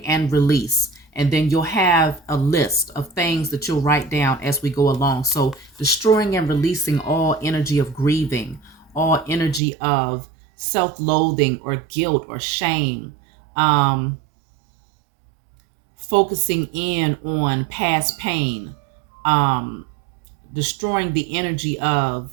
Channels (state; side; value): drops out; left; at 9.6 s